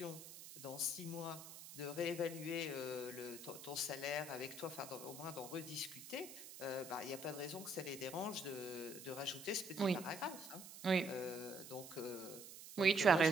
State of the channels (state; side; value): noise; right; hiss, 13 dB below the sound